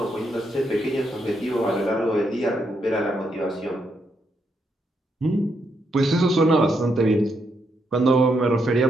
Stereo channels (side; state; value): both; normal; correlation 0.78